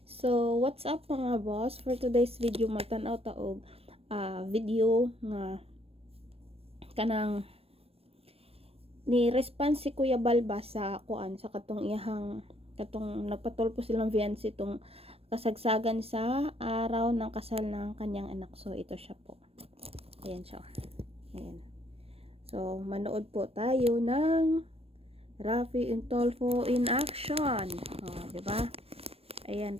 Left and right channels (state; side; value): late; left; 0.28 ms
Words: So, what's up mga boss? For today's video, magtanaw taog video nga kanang ni response si Kuya Balba sa kuan sa katong iyahang katong nagpatulpo silang fiancé itong kasagsagan sa araw ng kasal ng kanyang anak. So, ito siya po. Ayan siya. Ayan. So, manood po tayo ng Rafi Tulfo in action. Diba? Ayan,